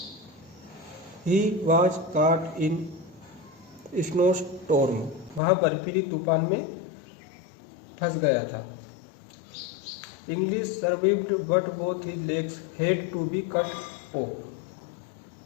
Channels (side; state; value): right; drops out; at 5.4 s